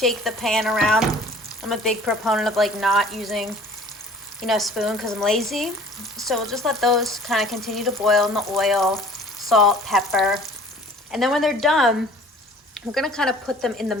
the pan around. I'm a big proponent of like not using, you know, a spoon because I'm lazy. So we'll just let those kind of continue to boil in the oil, salt, pepper. And then when they're done, we're gonna kind of put them in the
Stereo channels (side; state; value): both; normal; correlation 0.49